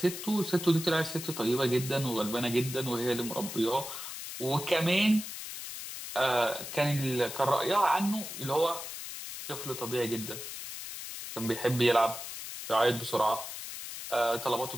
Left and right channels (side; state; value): left; noise; hiss, 9 dB below the sound